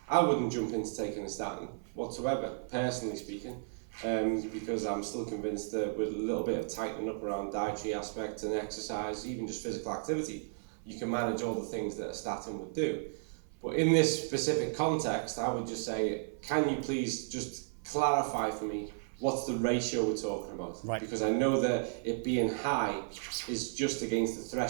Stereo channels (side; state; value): left; silent; 55 dB below the other